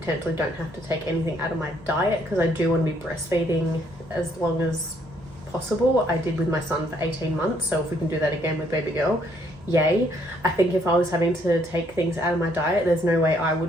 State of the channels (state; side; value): noise; right; hum, 27 dB below the sound